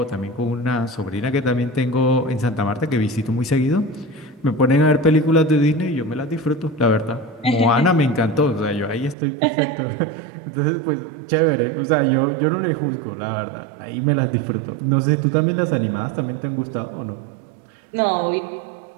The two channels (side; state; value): left; drops out; at 9.2 s